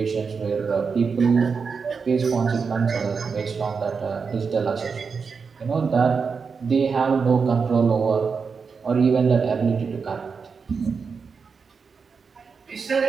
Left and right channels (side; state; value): left; quieter; 5.4 dB